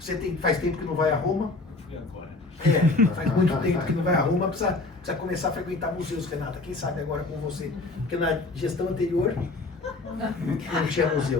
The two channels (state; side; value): quieter; right; 3.3 dB